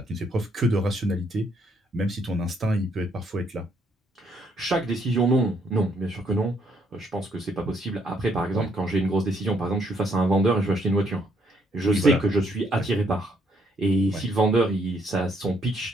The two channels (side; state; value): both; normal; correlation 0.70